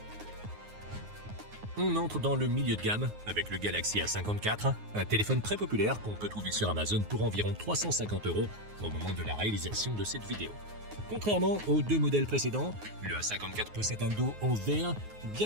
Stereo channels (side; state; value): left; late; 9.5 ms